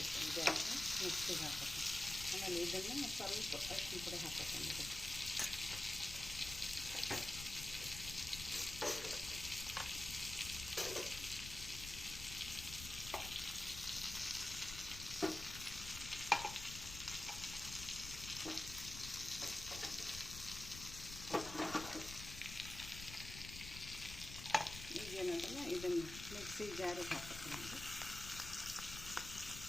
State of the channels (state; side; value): noise; left; rumble, 10 dB below the sound